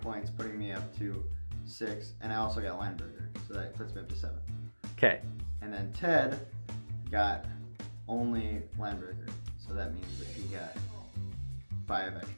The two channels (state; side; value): inverted; both; correlation -1.00